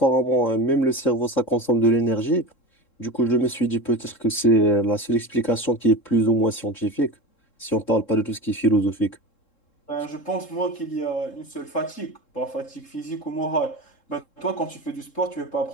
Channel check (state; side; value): late; right; 3.7 ms